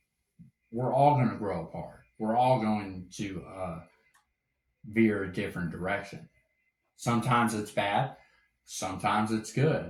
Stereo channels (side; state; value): both; identical; correlation 1.00